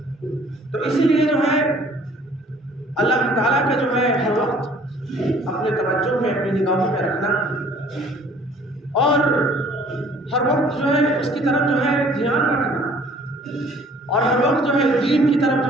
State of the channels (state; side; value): normal; both; correlation 0.55